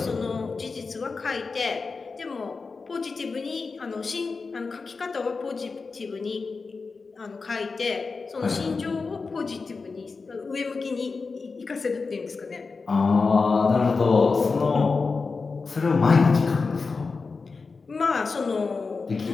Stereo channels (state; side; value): quieter; right; 4.4 dB